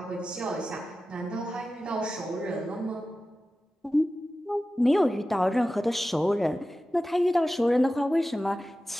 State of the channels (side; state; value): both; normal; correlation 0.94